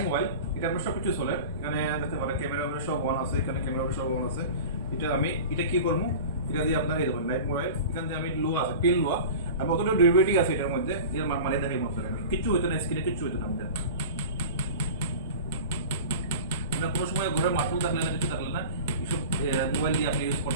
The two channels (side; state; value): both; inverted; correlation -0.35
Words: মোবাইল, এটা আপনার সবকিছু চলে, এখানে দেখতে পারেন ক্যামেরা সব অন আছে, এখানে ক্যামেরা সব অন আছে। এটা কি করবো, এটা দিয়ে আপনার এই দেখুন লাইভ মোবাইল, এখান থেকে আমি লোয়া আছে পিন লোয়া, আর কতটা ডিউরেবিলিটি আছে এটার মধ্যে, এর মানে দেখাই মতো আমি কিচ্ছু হইতো না, স্ক্রিনে কিচ্ছু হইতো না আমাদের। কোনো সময় ঘরে মাঠও থাকলে না, কিছু থাকলে না, এইসব মোবাইল দিয়ে আপনি ইউজ